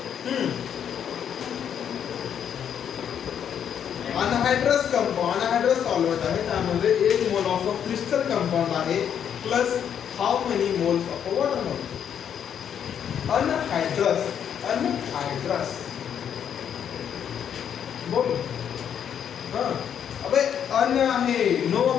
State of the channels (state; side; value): quieter; right; 8.7 dB